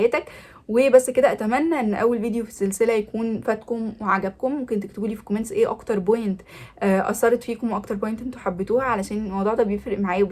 وبس كده، اتمنى ان اول فيديو في السلسله يكون فاتكم وعجبكم. ممكن تكتبوا لي في كومنتس ايه اكتر بوينت اثرت فيكم واكتر بوينت انتوا حبيتوها، علشان الموضوع ده بيفرق معايا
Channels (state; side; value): identical; both; correlation 1.00